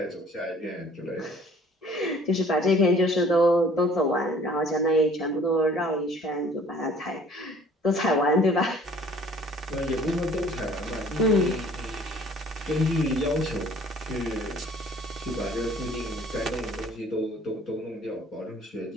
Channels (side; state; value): both; normal; correlation 0.53